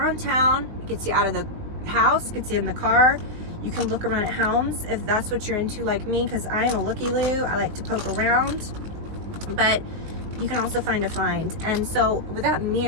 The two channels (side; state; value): left; late; 19 ms